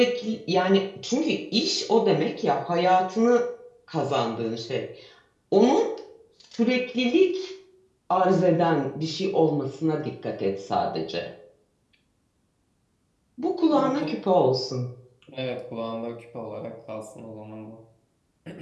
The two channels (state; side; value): identical; both; correlation 1.00